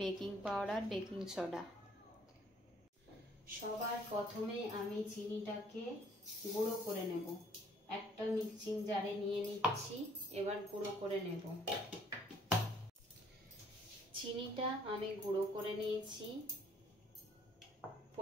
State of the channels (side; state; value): both; normal; correlation 0.61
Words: বেকিং পাউডার, বেকিং সোডা। সবার প্রথমে আমি চিনিটাকে গুঁড়ো করে নেব। একটা মিক্সিং জারে নিয়ে নিচ্ছি, এবার গুঁড়ো করে নেব। চিনিটা আমি গুঁড়ো করে নিয়েছি।